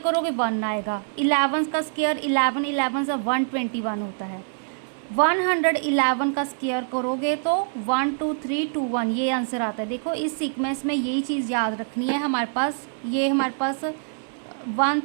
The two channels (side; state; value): left; silent; digital silence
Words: 1 आएगा, 11 का स्क्वायर 11 11 सा 121 होता है। 111 का स्क्वायर करोगे तो 1 2 3 2 1, ये आंसर आता है। देखो इस सीक्वेंस में यही चीज़ याद रखनी है हमारे पास। ये हमारे पास